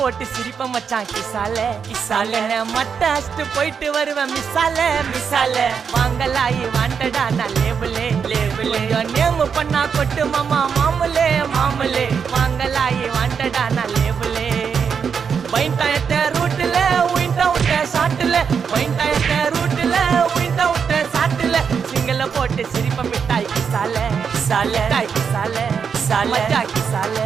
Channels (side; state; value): left; quieter; 6.5 dB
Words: போட்டு சிரிப்ப மச்சான் கிசால கிசால மட்ட அஷ்டு போயிட்டு வருவேன் மிசால மிசால வாங்கலாயி வாண்டடா நான் லேபிளே லேபிளே நேம் பண்ணா கொட்டு மாமா மாமலே மாமலே வாங்கலாயி வாண்டடா நான் லேபிளே பைண்டாயத்த ரூட்ல உயிண்டா விட்ட சாட்டுல பைண்டாயத்த ரூட்ல உயிண்டா விட்ட சாட்டுல சிங்கல போட்டு சிரிப்ப மிட்டாய் கிசால கிசால கிசால சால கிசால